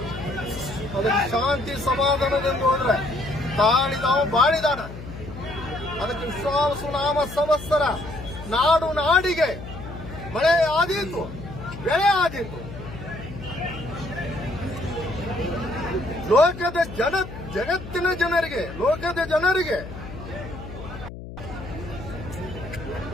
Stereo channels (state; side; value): noise; left; hum, 12 dB below the sound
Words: ಅದಕ್ಕೆ ಶಾಂತಿ ಸಮಾಧಾನದಿಂದ ಹೋದ್ರೆ ತಾಳಿದಾವ ಬಾಳಿದಾನ. ಅದಕ್ಕೆ ವಿಶ್ವಾಸ ನಾಮ ಸಂವತ್ಸರ ನಾಡು ನಾಡಿಗೆ ಮಳೆ ಆದೀತು, ಬೆಳೆ ಆದೀತು. ಲೋಕದ ಜಗತ್ತಿನ ಜನರಿಗೆ, ಲೋಕದ ಜನರಿಗೆ